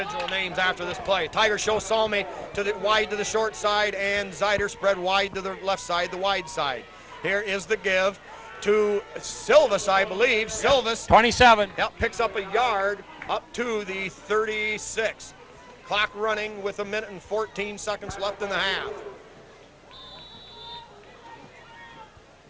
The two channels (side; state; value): both; identical; correlation 1.00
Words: names after this play. Tiger show Salmi to the wide to the short side, and Zeider spread wide to the left side, the wide side. Here is the give to Silvis, I believe. Silvis, 27. Yep, picks up a yard up to the 36. Clock running with 1 minute and 14 seconds left in the half.